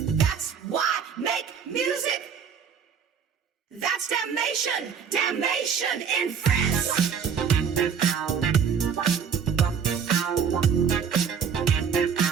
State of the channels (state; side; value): quieter; left; 6.9 dB